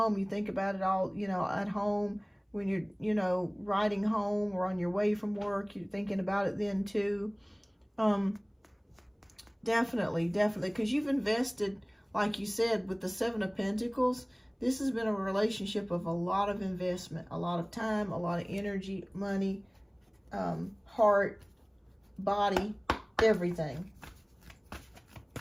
you think about it all, at home. When you're, riding home or on your way from work, you're thinking about it then too. Definitely, because you've invested, like you said, with the Seven of Pentacles. This has been a relationship of a lot of investment, a lot of time, a lot of energy, money, heart, body, everything.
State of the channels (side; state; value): both; identical; correlation 1.00